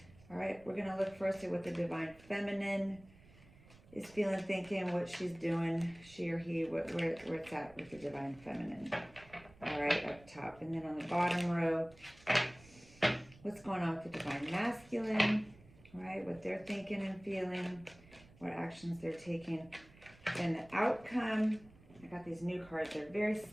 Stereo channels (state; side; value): noise; right; rumble, 24 dB below the sound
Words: All right, we're gonna look first at what the divine feminine is feeling, thinking, what she's doing, she or he, where it's at with the divine feminine. All right, up top, and then on the bottom row, what's going on with the divine masculine? All right, what they're thinking and feeling, what actions they're taking, and the outcome. I got these new cards. They're very